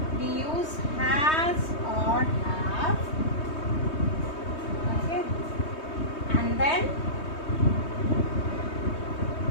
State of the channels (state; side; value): late; right; 3.2 ms